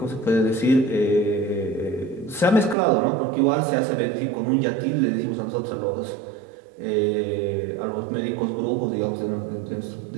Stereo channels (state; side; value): drops out; left; at 2.8 s